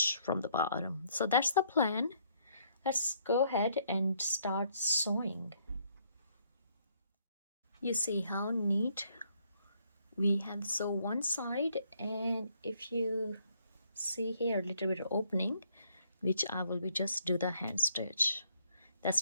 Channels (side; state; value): both; inverted; correlation -0.69